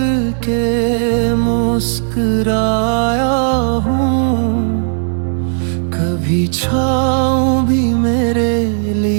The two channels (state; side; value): silent; left; 69 dB below the other